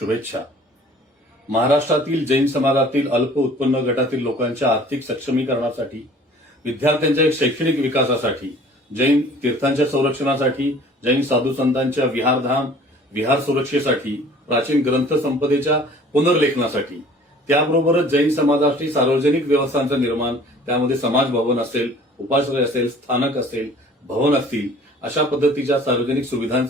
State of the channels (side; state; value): both; normal; correlation 0.50